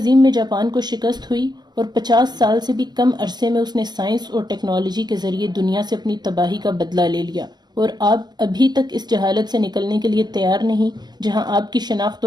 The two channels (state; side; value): late; left; 0.21 ms